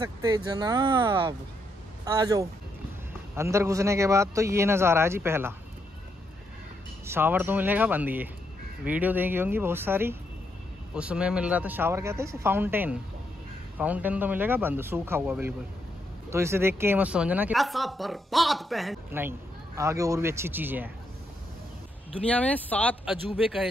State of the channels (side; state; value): both; normal; correlation 0.78